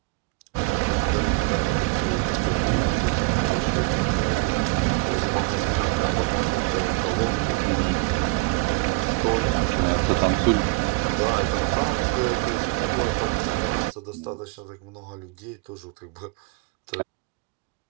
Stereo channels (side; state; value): left; quieter; 25.9 dB